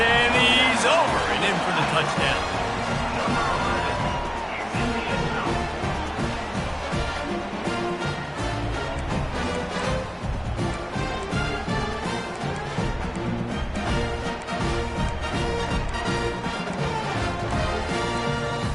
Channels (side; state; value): both; identical; correlation 1.00